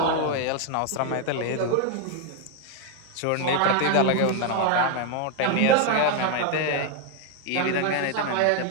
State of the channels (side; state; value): both; different; correlation 0.01